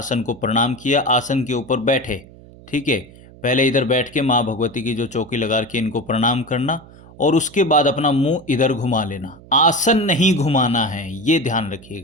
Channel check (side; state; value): right; noise; hum, 21 dB below the sound